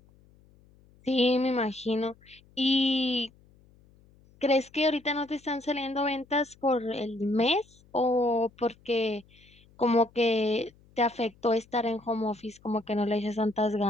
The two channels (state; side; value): noise; left; hum, 29 dB below the sound